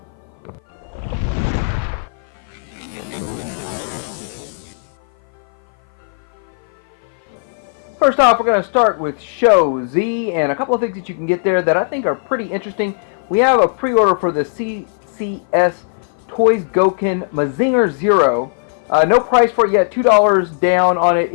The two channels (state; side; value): silent; right; 56 dB below the other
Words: First off, we're going to start with Show Z and a couple of things that you can get there that I think are pretty interesting. We have a pre-order for the CCS Toys Goken Mazinger Zero. No price for it yet, $2 down on it.